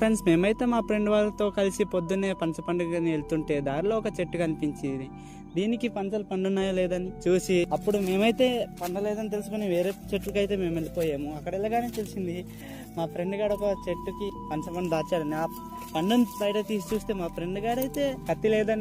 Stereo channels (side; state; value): both; identical; correlation 1.00